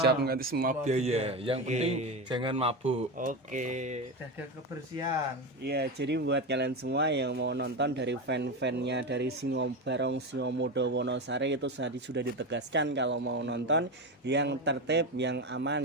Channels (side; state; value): both; normal; correlation 0.18